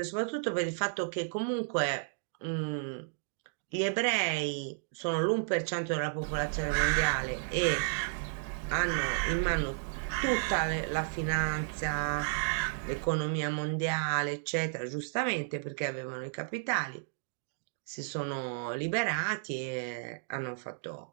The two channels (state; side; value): silent; left; digital silence